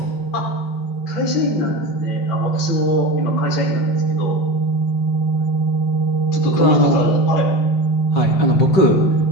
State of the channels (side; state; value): right; late; 5.3 ms